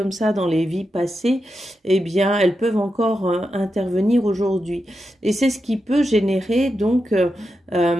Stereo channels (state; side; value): normal; both; correlation 0.88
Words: ça dans les vies passées, eh bien elles peuvent encore intervenir aujourd'hui. Et c'est ce qui peut générer donc